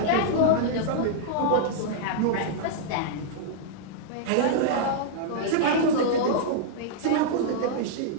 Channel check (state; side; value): different; both; correlation -0.02